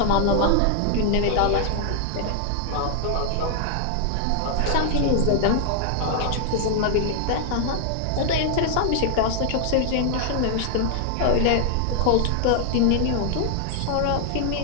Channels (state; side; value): different; both; correlation 0.00